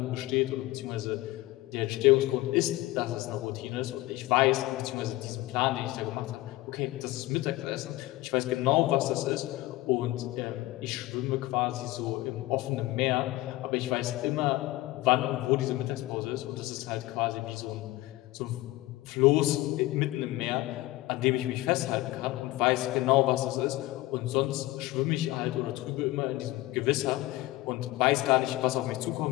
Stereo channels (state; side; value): quieter; right; 18.2 dB